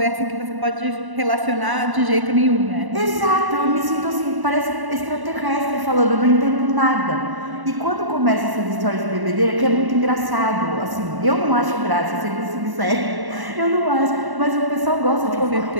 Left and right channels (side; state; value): left; late; 1.0 ms